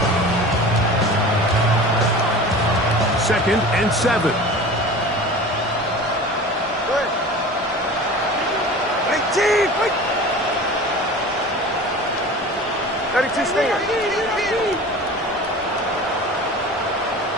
Second and 7. Good. 18. 32 Stinger.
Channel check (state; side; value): normal; both; correlation 0.37